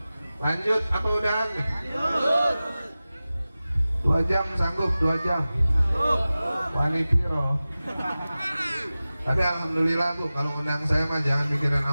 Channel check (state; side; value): inverted; both; correlation -0.96